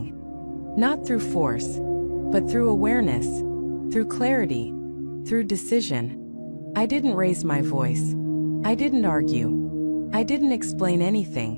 Not through force, but through awareness, through clarity, through decision. I didn't raise my voice. I didn't argue. I didn't explain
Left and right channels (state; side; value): inverted; both; correlation -1.00